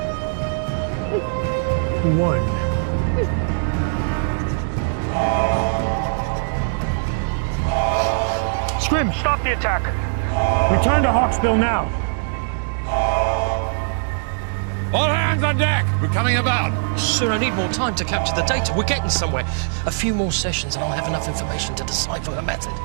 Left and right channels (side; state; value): left; silent; digital silence